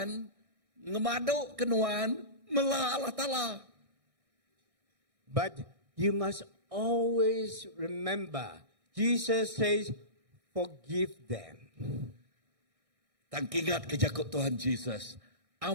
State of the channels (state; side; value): late; left; 1.6 ms